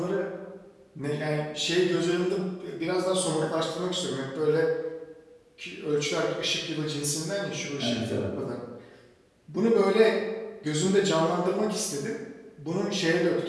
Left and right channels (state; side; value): identical; both; correlation 1.00